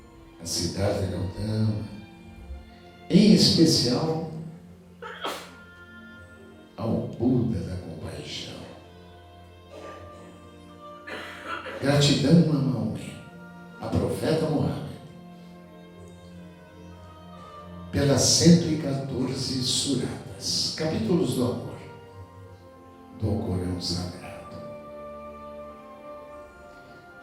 a Siddhartha Gautama, em especial ao Buda da compaixão. Gratidão a Maomé, a profeta Muhammad, pelas 114 suratas, capítulos do amor, do Corão Sagrado.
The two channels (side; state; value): both; identical; correlation 1.00